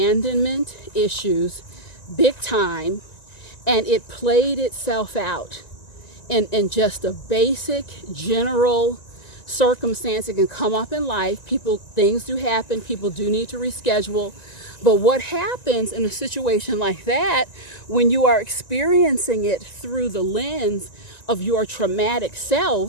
issues big time, and it played itself out in just a basic general circumstance. It can come up in life. Things do happen. People do need to reschedule. But what happens in a situation like that, when you are experiencing it through the lens of your traumatic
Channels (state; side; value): late; right; 1.9 ms